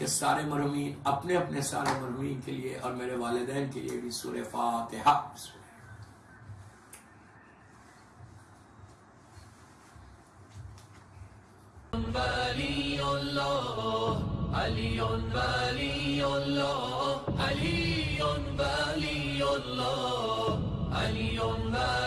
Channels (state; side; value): identical; both; correlation 1.00